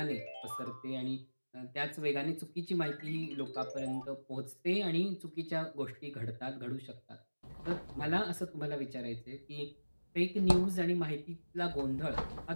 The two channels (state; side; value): inverted; both; correlation -1.00